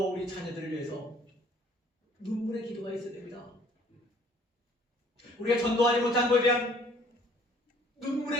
우리 자녀들을 위해서 눈물의 기도가 있어야 됩니다. 우리가 전도하지 못한 것에 대한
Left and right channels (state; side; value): normal; both; correlation 0.57